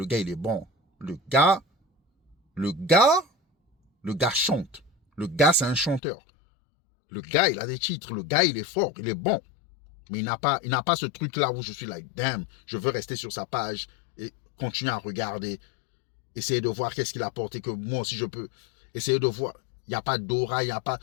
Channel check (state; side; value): drops out; right; at 6.0 s